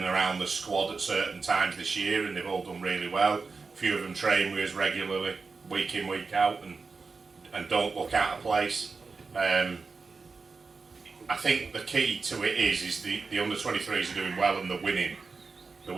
around the squad at certain times this year, and they've all done really well. A few of them train with us regularly, week in, week out, and don't look out of place. I think the key to it is the under-23s are doing well and they're winning. They're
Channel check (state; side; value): quieter; left; 4.5 dB